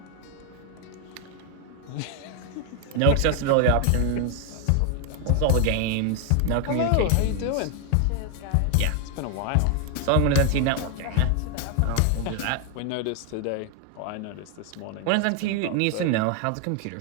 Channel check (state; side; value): different; both; correlation 0.01